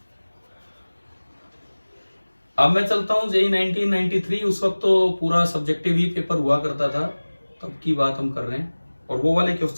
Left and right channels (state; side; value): inverted; both; correlation -1.00